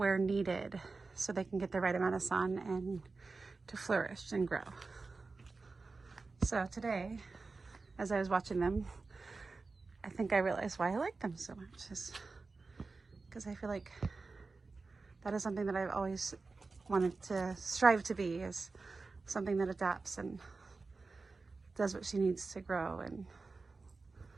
needed so they can get the right amount of sun and to flourish and grow. So today, as I was watching them, I think I realized why I like them so much, is because I feel like that is something that I've always wanted to strive to be, is something that adapts and does what she needs to grow and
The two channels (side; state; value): left; quieter; 4.0 dB